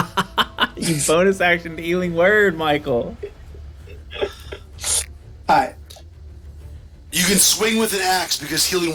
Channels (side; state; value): both; identical; correlation 1.00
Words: You bonus action healing word, Michael. Alright. You can swing with an axe because